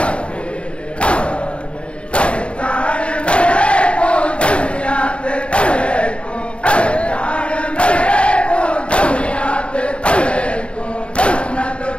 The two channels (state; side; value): late; right; 0.058 ms